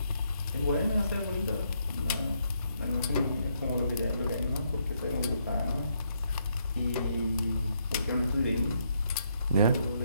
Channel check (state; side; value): inverted; both; correlation -0.75